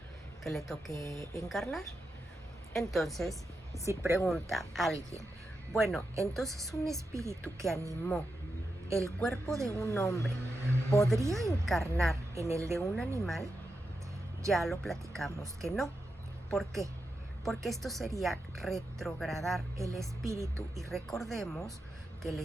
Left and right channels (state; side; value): normal; both; correlation 0.88